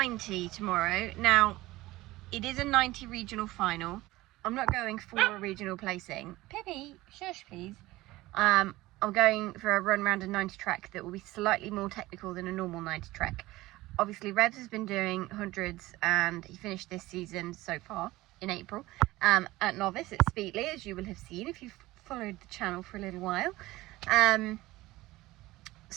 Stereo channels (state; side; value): quieter; left; 18.4 dB